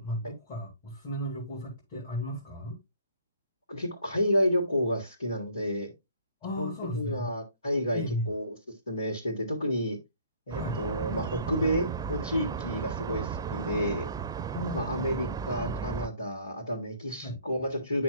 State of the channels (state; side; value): inverted; both; correlation -0.55